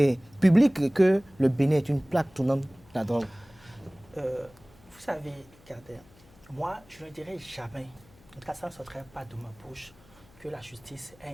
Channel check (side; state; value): left; noise; hum, 27 dB below the sound